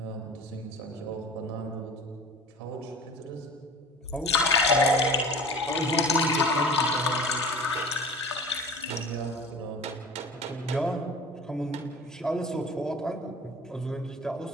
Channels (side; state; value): both; normal; correlation 0.40